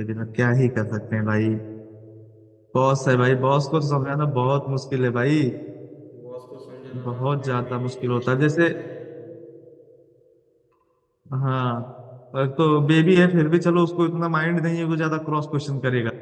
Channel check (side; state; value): both; identical; correlation 1.00